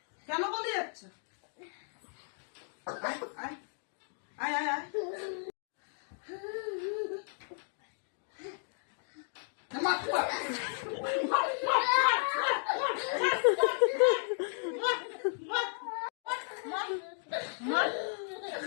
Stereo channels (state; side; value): silent; right; 55 dB below the other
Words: কেন পালিয়ে যাচ্ছে? আয় আয় আয় আয় আয়। মার মার